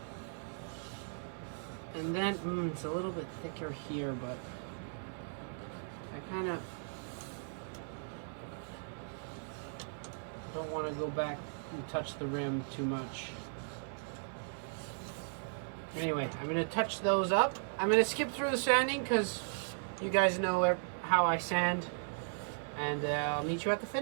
And then, it's a little bit thicker here, but I kind of don't want to go back and touch the rim too much. Anyway, I'm going to touch those up. I'm going to skip through the sanding because you guys know how I sand. And I'll meet you at the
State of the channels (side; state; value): left; silent; 53 dB below the other